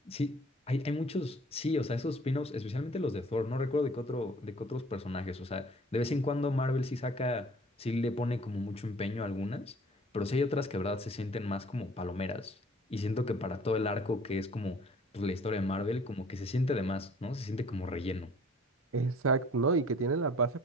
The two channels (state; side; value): normal; both; correlation 0.52